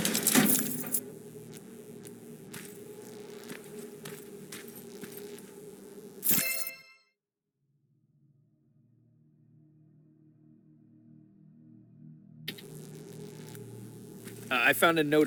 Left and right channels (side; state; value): both; identical; correlation 1.00